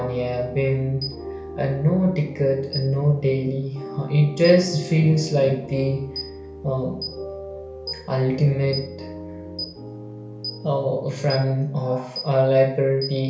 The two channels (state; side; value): identical; both; correlation 1.00